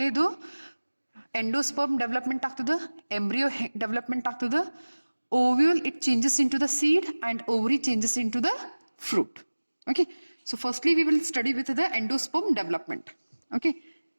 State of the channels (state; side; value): inverted; both; correlation -1.00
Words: endosperm development ಆಗ್ತದೆ, embryo development ಆಗ್ತದೆ, ovule it changes into the seed and ovary changes into the fruit. Okay, so firstly we will study with the endosperm development. Okay,